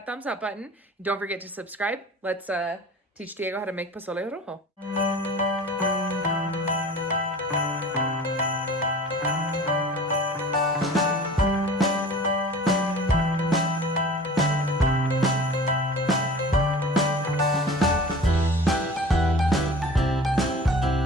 thumbs up button. Don't forget to subscribe. Let's teach Diego how to make Pozole Rojo.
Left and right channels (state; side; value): normal; both; correlation 0.42